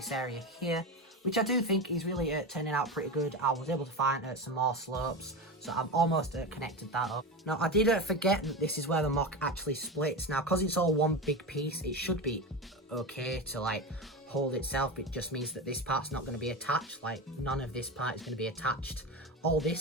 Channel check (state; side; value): normal; both; correlation 0.21